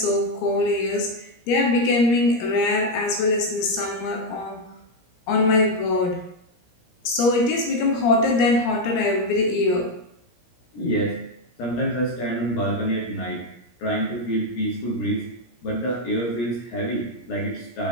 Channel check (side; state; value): right; late; 17 ms